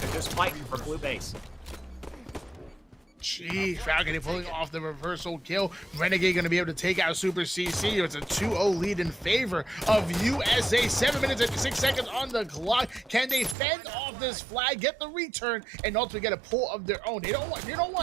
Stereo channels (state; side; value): drops out; left; at 13.6 s